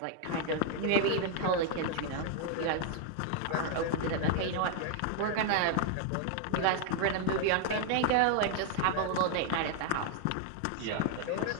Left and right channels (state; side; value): different; both; correlation 0.00